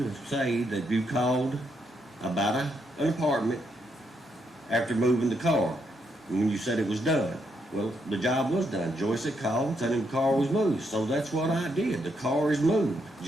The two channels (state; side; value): normal; both; correlation 0.78